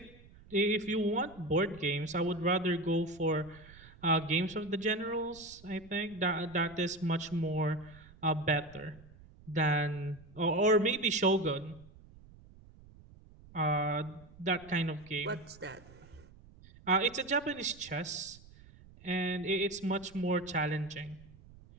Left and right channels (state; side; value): noise; right; rumble, 22 dB below the sound